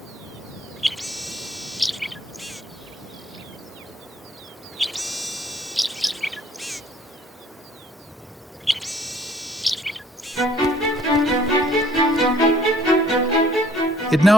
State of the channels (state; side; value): normal; both; correlation 0.59